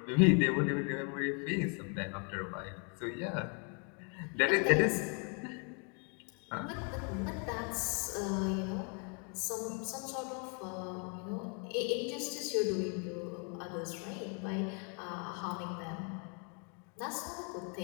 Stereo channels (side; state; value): right; quieter; 37.5 dB